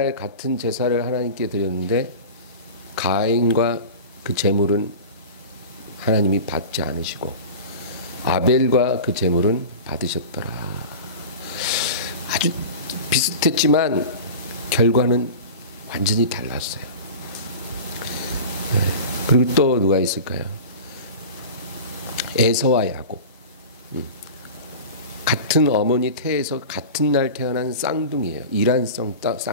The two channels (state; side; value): inverted; both; correlation -0.33